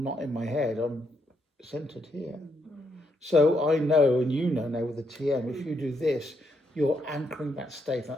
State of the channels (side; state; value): both; normal; correlation 0.77